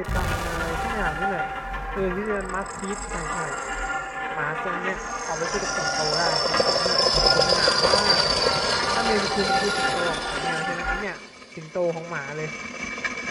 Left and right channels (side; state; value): both; identical; correlation 1.00